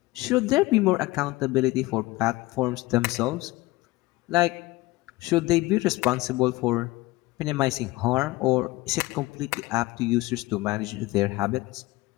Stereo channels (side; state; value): right; quieter; 20.1 dB